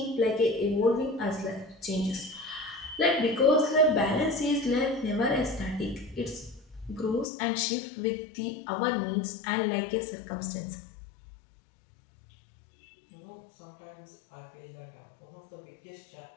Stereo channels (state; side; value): drops out; right; at 7.2 s